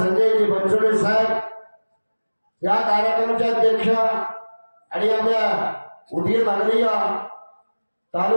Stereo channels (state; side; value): inverted; both; correlation -1.00